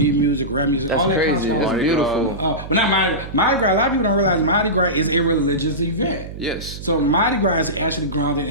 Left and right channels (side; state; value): right; noise; hum, 11 dB below the sound